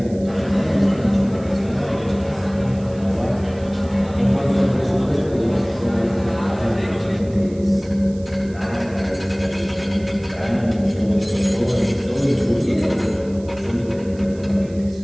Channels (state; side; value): noise; right; hiss, 25 dB below the sound